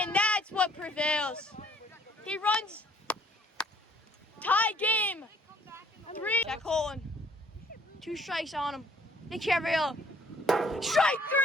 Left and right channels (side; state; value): both; normal; correlation 0.60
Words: that's what prevails. He runs. Tie game. 3. Jack Holland. 2 strikes on him. Nick Cavariello. Strike